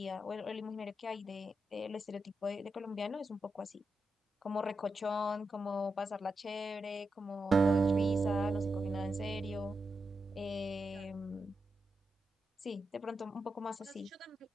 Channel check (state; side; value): normal; both; correlation 0.87